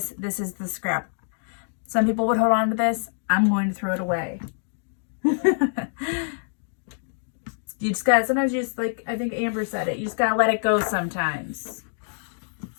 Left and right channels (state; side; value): silent; right; digital silence